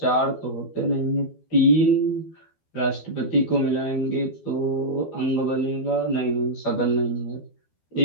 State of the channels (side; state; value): right; late; 12 ms